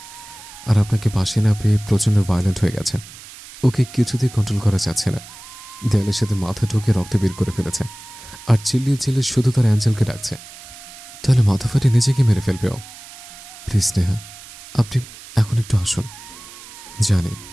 আর আপনাকে পাশে না পেয়ে প্রচণ্ড ভায়োলেন্ট হয়ে গেছে। ওকে কিছুতেই কন্ট্রোল করা যাচ্ছে না। দেয়ালের সাথে মাথা ঢুকে রক্ত বের করে ফেলেছে, আর চিল্লিয়ে চিল্লিয়ে শুধু তার অ্যাঞ্জেলকে ডাকছে। তাহলে মাথা ফাটে নিজেকে মেরে ফেলবে ও। প্লিজ স্নেহা, আপনি এখন একটু আসুন। জানি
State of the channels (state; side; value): noise; right; hiss, 17 dB below the sound